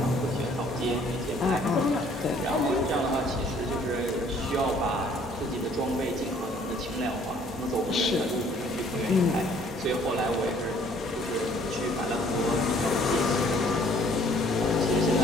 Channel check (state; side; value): normal; both; correlation 0.59